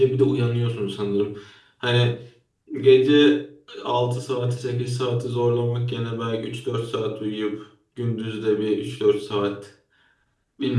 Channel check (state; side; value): identical; both; correlation 1.00